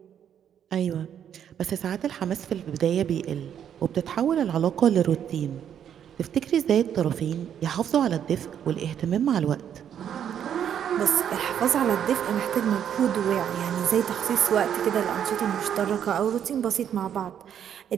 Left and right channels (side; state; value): left; quieter; 9.2 dB